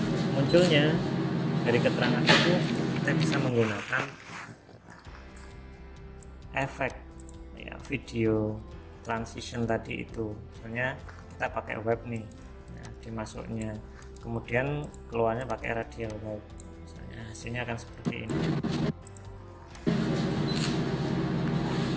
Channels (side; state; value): both; identical; correlation 1.00